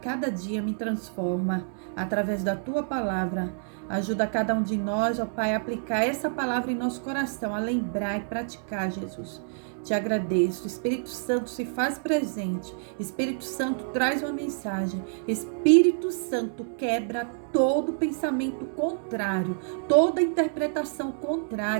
dia, me transforma através da tua palavra. Ajuda cada um de nós, ó Pai, a aplicar essa palavra em nosso coração, a lembrar e praticar, Jesus. Te agradeço. Espírito Santo, se faz presente. Espírito Santo, traz uma mensagem. Espírito Santo, quebra todo pensamento contrário, toda interpretação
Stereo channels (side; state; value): left; silent; digital silence